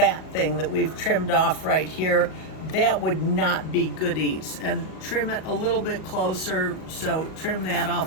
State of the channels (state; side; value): late; right; 38 ms